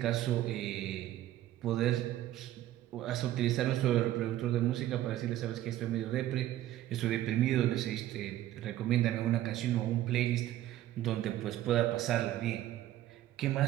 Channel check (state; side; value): quieter; left; 13.7 dB